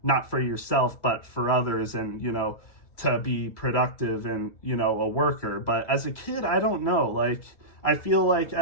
not for yourself, but for others, and, to be productive and, a worker. But as a kid, I don't know. Like, I feel like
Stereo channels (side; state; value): right; late; 2.3 ms